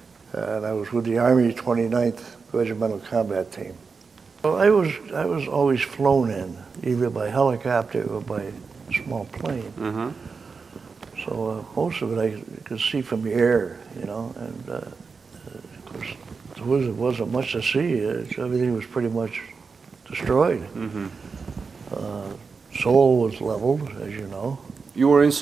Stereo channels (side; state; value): left; quieter; 5.0 dB